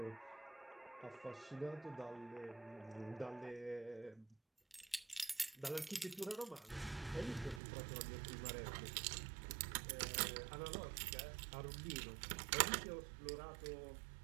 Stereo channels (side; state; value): left; drops out; at 7.6 s